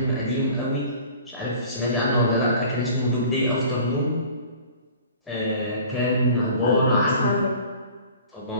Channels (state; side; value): inverted; both; correlation -0.45